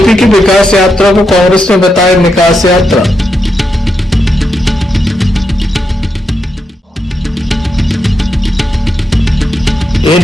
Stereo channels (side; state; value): both; normal; correlation 0.84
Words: की विकास यात्रा को कांग्रेस ने बताया निकास यात्रा।